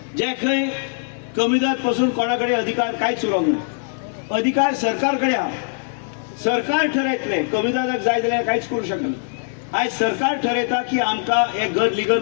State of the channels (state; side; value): silent; right; digital silence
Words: जे खंय कमीदाद पासून कोणाकडे अधिकार कांयच उरोंक ना. अधिकार सरकार कडेन आहा. सरकार ठरयतले कमीदाराक जाय जाल्यार कांयच करूं शकना. आज सरकार ठरयता की आमकां हे घर